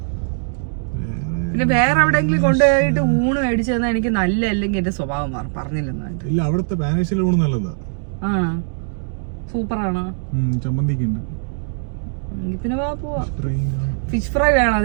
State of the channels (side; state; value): left; silent; digital silence